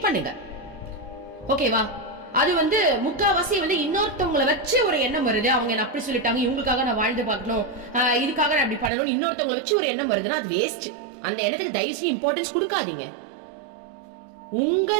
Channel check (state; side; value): drops out; left; at 8.9 s